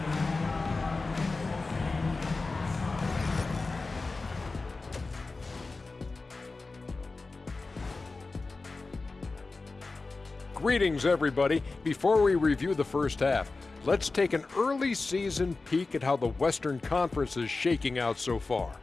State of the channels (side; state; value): right; quieter; 3.7 dB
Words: Greetings, everybody. Before we review the first half, let's take an early season peek at how the Western Conference is shaking out so far.